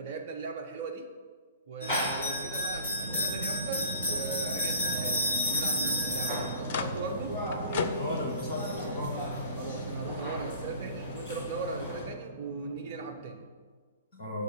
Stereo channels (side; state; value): both; inverted; correlation -0.45